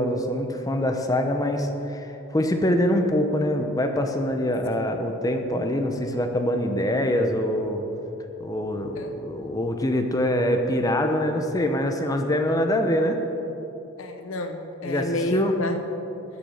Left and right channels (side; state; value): both; normal; correlation 0.56